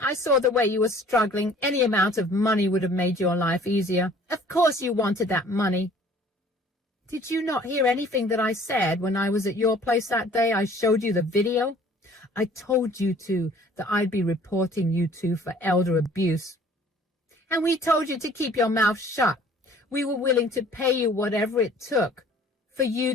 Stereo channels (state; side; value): normal; both; correlation 0.53